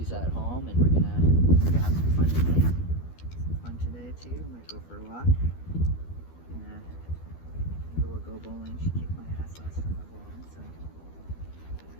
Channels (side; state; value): right; late; 12 ms